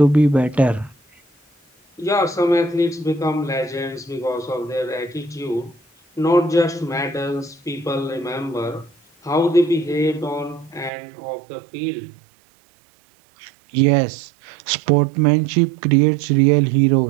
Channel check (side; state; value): left; drops out; at 10.9 s